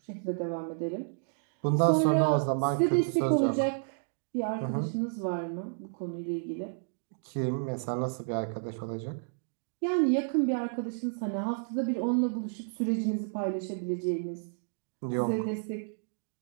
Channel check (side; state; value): left; silent; digital silence